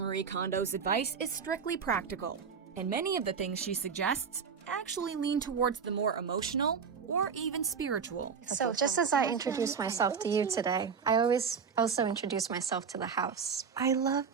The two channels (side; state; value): left; quieter; 6.2 dB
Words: Kondo's advice is strictly practical, and many of the things she suggests actually lean towards the more emotional or or even spiritual. So just as I introduced myself to you today, I always also introduce myself to the house. I love